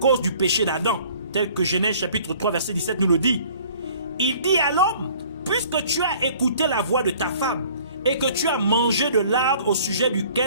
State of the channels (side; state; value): both; inverted; correlation -0.53